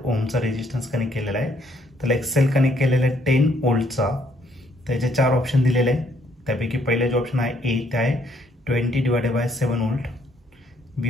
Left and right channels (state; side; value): normal; both; correlation 0.68